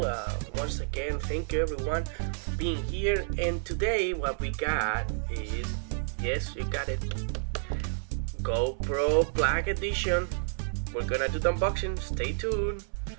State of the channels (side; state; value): left; silent; 58 dB below the other